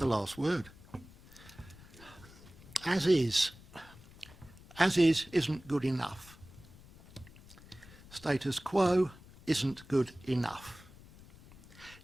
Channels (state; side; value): noise; left; rumble, 21 dB below the sound